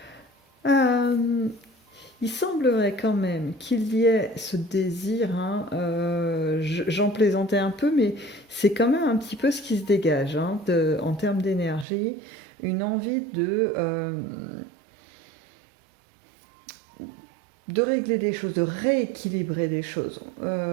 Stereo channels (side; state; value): left; drops out; at 11.9 s